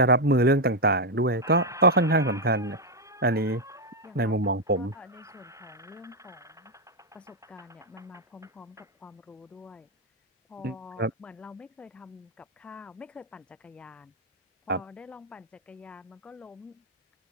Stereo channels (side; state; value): both; normal; correlation 0.01